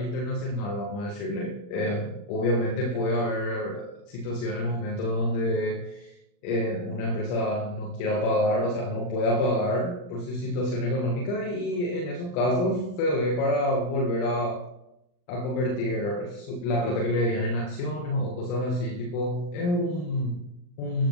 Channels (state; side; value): late; right; 40 ms